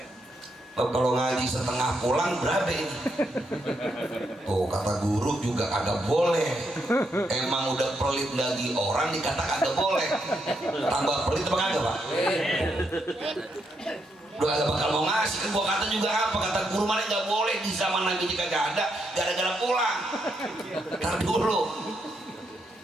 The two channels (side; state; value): both; normal; correlation 0.79